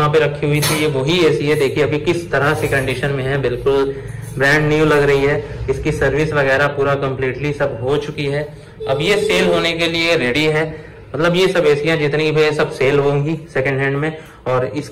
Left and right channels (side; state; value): both; identical; correlation 1.00